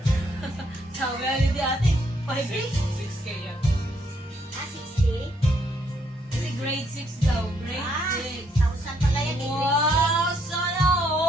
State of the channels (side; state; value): both; normal; correlation 0.72